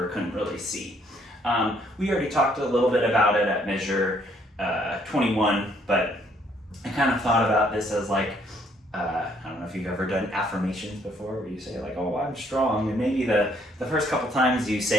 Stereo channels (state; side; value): normal; both; correlation 0.66